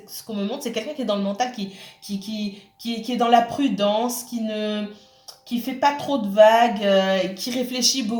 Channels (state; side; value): identical; both; correlation 1.00